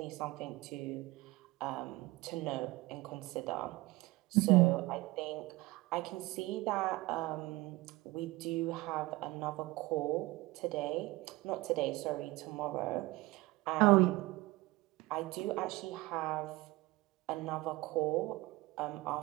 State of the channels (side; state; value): left; quieter; 20.7 dB